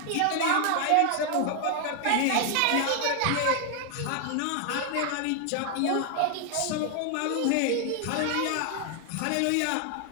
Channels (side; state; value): both; different; correlation 0.00